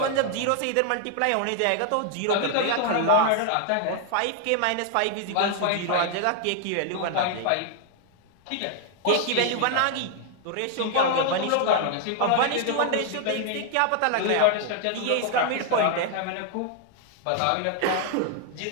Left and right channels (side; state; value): both; different; correlation 0.00